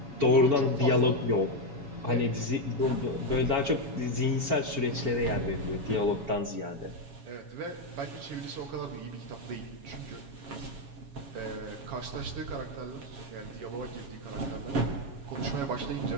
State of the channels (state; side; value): late; left; 7.2 ms